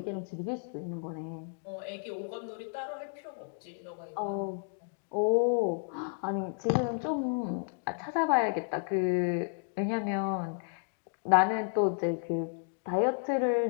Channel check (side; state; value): right; silent; 56 dB below the other